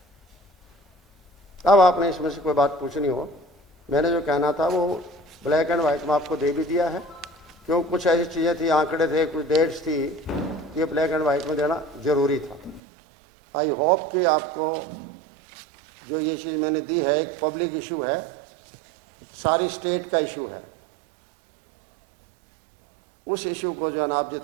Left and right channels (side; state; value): left; drops out; at 12.8 s